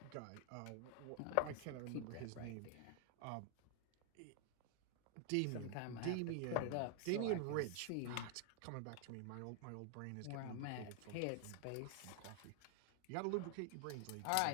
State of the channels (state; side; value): different; both; correlation 0.00